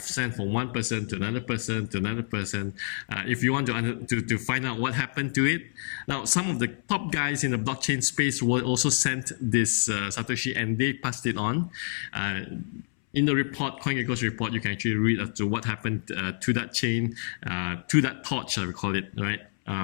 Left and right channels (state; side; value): silent; right; 59 dB below the other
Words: from one person to another person to another person. If you want to find out what happened to it, now some of the top guys in the blockchain space were also sent this Satoshi, and they passed it on. In the report, Coingecko's report, you can actually read as to what happened to that chain, to that torch, I would call it, right?